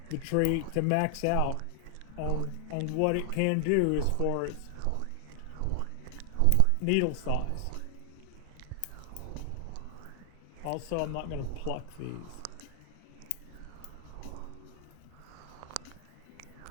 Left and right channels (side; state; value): both; different; correlation 0.00